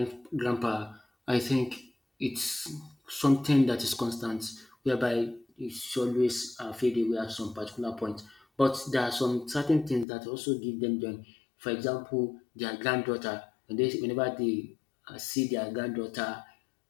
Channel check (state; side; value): drops out; right; at 10.1 s